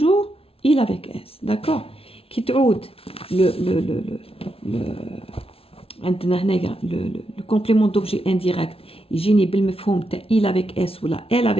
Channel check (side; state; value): right; late; 0.27 ms